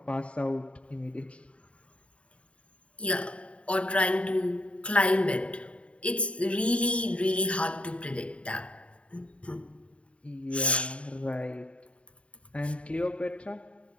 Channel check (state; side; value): late; right; 0.062 ms